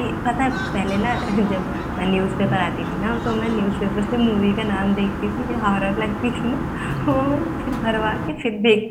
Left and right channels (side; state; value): both; identical; correlation 1.00